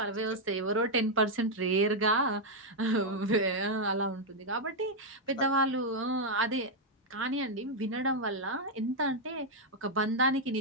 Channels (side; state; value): both; normal; correlation -0.01